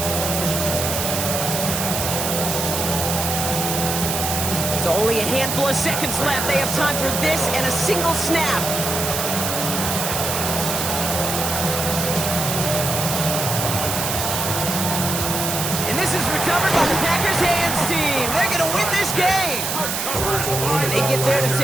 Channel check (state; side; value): noise; right; hiss, 2 dB below the sound